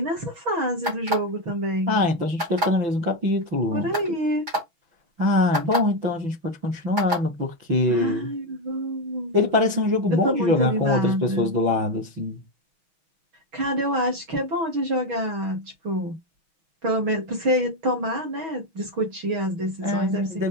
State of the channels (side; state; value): left; late; 6.2 ms